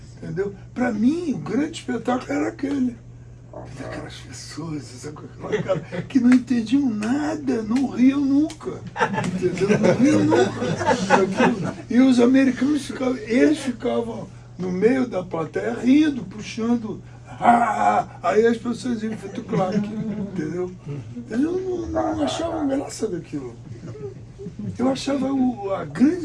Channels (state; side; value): identical; both; correlation 1.00